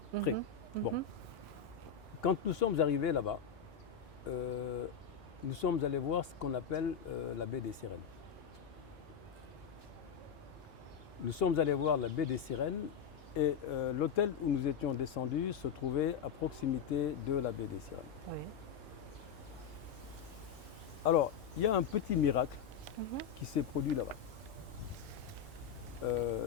Très. Bon. Quand nous sommes arrivés là-bas, nous sommes allés voir ce qu'on appelle la baie des Sirènes. Nous sommes allés voir la baie des Sirènes et l'hôtel où nous étions descendus se trouvait à proximité de la baie des Sirènes. Oui. Alors, il y a un petit miracle qui s'est produit là-bas.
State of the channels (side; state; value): right; quieter; 7.2 dB